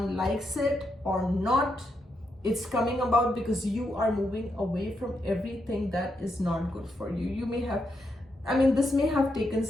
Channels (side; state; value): both; normal; correlation 0.82